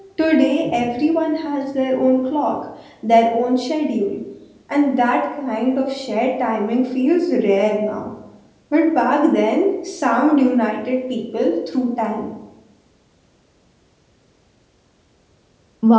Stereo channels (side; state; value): both; identical; correlation 1.00